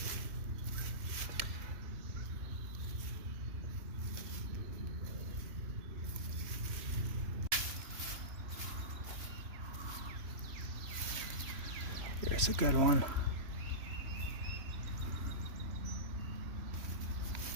Here's a good one.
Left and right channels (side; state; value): left; late; 3.0 ms